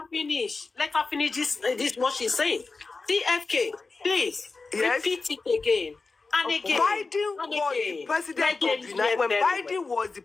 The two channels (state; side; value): quieter; right; 4.0 dB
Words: finish. Let her finish this what she's saying. CFK, please repeat it again. And again. Biden was the president of the United States. When Biden was the